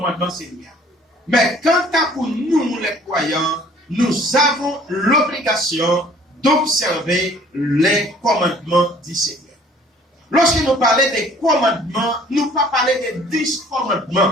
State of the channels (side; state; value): both; normal; correlation 0.55